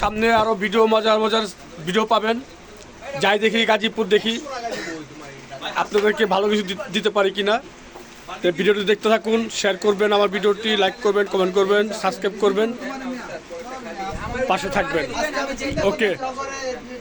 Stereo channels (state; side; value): identical; both; correlation 1.00